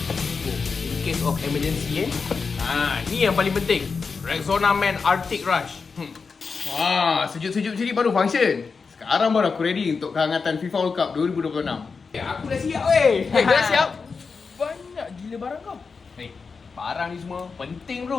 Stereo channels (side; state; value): right; quieter; 5.0 dB